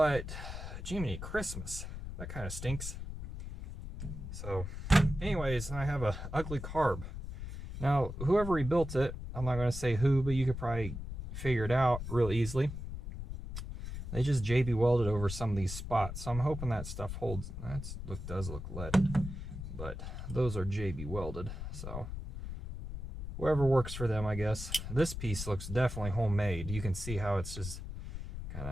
Jiminy Christmas, that kind of stinks. So anyways, I have a ugly carb. Now whoever rebuilt it, I'm not going to say who, but you could probably figure it out real easily. They just JB welded over some of these spots, so I'm hoping that stuff holds. That does look leaded, but those are JB welded, so whoever works for them, I guess. This piece looks definitely homemade. You can see how it's just kind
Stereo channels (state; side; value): noise; left; rumble, 7 dB below the sound